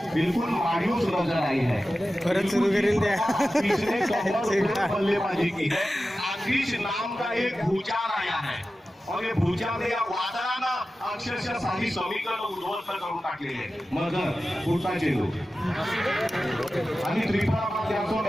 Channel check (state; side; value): normal; both; correlation 0.94